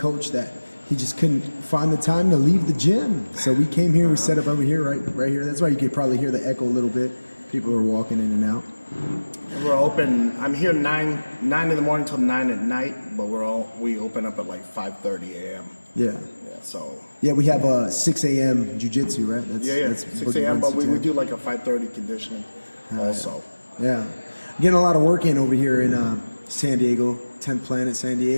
that he just couldn't find the time to leave the gym. So we came here, we set up over here, right here. That's why you could probably hear the echo a little bit. People are walking in and out. We're open. I'm here 9 in the morning till 9 at night, but we open up at like 5:30 a.m. Yeah. So. Yeah, we have 6 a.m. jiu-jitsu, right? That's 6 a.m., but we do like a 5:30 conditioning also. Yeah. Getting a lot of work in over here in San Diego, 10th Planet San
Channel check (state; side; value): inverted; both; correlation -1.00